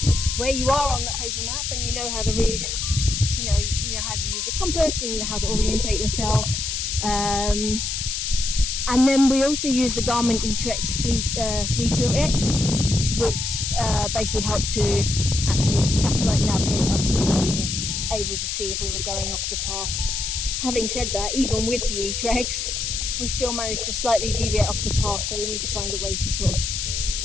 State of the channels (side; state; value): left; noise; hiss, 2 dB below the sound